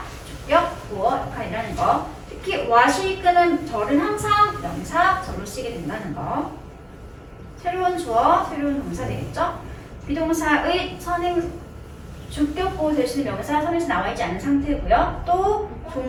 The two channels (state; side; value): identical; both; correlation 1.00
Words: 주격, 보어 역할이라는 거. 특히 what이 이끄는 절은 항상 명사절로 쓰게 된다는 거. 새로운 주어, 새로운 동사 되겠죠? 비동사의 선행 주격 보호 대신 명사 선에서 나와 있지 않은 상태고요. 또